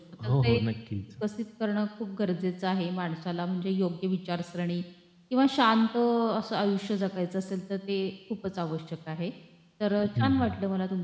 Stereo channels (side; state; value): both; identical; correlation 1.00